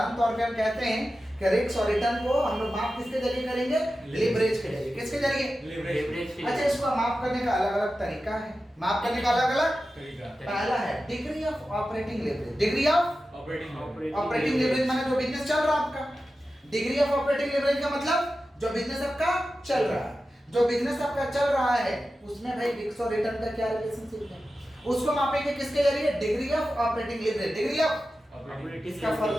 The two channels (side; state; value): both; normal; correlation 0.93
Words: तौर पे हम कहते हैं कि रिस्क और रिटर्न को हम लोग माप किसके जरिए करेंगे? लीवरेज के जरिए। किसके जरिए? लीवरेज। अच्छा, इसको माप करने का अलग-अलग तरीका है। माप करने का अलग-अलग तरीका। पहला है degree of operating leverage. Degree of operating leverage माने जो बिजनेस चल रहा है आपका। डिग्री ऑफ ऑपरेटिंग लीवरेज का मतलब जो बिजनेस आपका चल रहा है, जो बिजनेस आपका चल रहा है उसमें भाई रिस्क और रिटर्न का क्या रिलेशनशिप है, उसको मापेंगे किसके जरिए? Degree of operating leverage. Degree of इसका